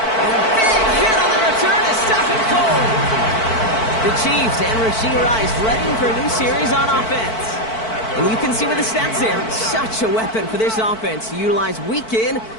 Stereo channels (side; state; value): right; late; 4.5 ms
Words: And a big hit on the return to stop it cold. The Chiefs and Rashee Rice ready for a new series on offense. And you can see with the stats there, such a weapon for this offense to utilize week in